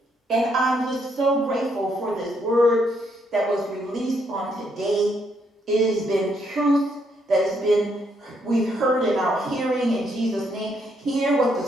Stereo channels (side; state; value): both; normal; correlation 0.74